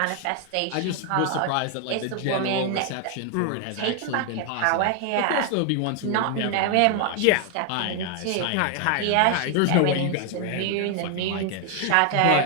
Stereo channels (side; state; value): both; different; correlation 0.00